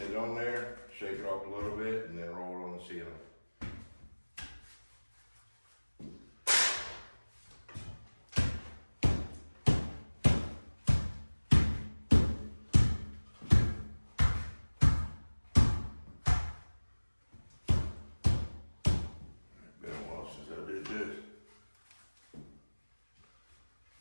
on there, shake it off a little bit, and then roll it on the ceiling. Been a while since I did this.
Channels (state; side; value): inverted; both; correlation -1.00